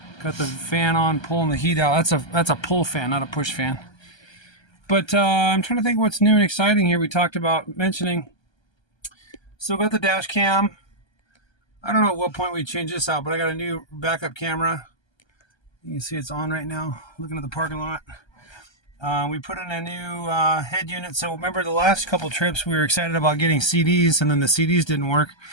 got the fan on, pulling the heat out. That's a pull fan, not a push fan. But I'm trying to think what's new and exciting here. We talked about mentioning. Still got the dash cam. I don't know at what point we change this out, but I got a new backup camera. You can see it's on right now, looking at the parking lot. We put in a new head unit. So remember the last couple trips we were excited about getting CDs, and then the CDs didn't work.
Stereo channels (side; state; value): right; late; 1.3 ms